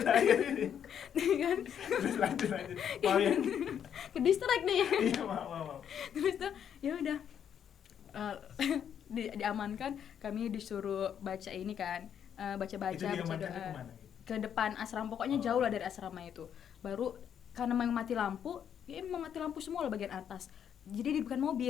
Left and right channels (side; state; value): right; quieter; 8.7 dB